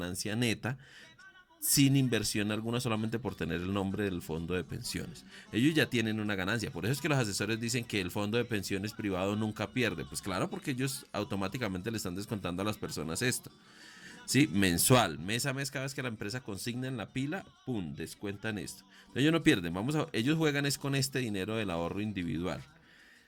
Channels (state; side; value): identical; both; correlation 1.00